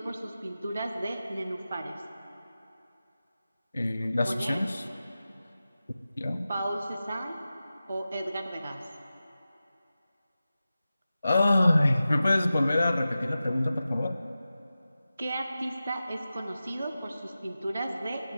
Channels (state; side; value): inverted; both; correlation -0.94